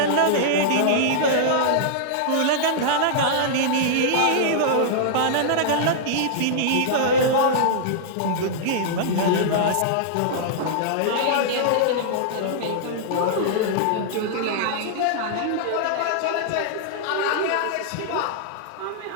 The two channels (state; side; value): different; both; correlation -0.02